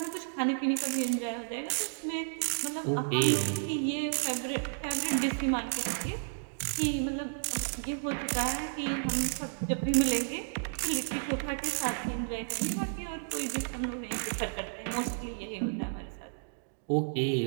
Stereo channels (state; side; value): silent; left; digital silence